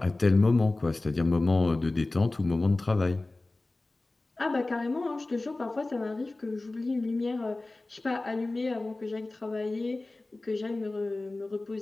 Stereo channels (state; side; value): quieter; right; 3.0 dB